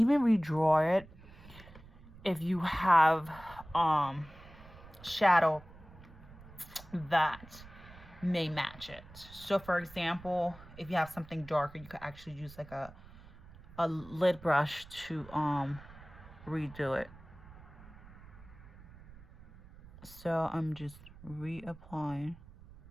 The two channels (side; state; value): right; noise; rumble, 20 dB below the sound